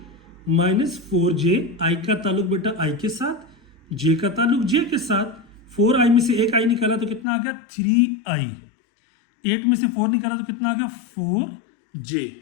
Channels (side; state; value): right; drops out; at 7.2 s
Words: minus 4j। i का ताल्लुक बेटा i के साथ, j का ताल्लुक j के साथ। 4i में से एक i निकाला तो कितना आ गया 3i, 8 में से 4 निकाला तो कितना आ गया 4j।